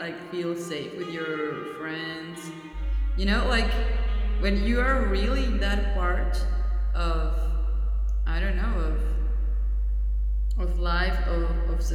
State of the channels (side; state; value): both; identical; correlation 1.00